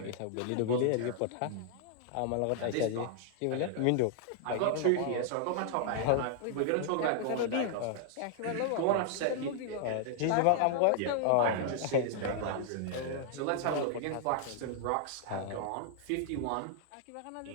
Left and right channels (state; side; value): different; both; correlation 0.00